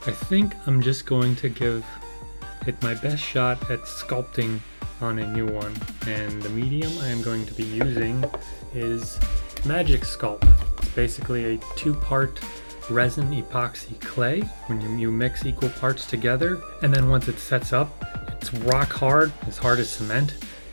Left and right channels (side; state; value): both; inverted; correlation -1.00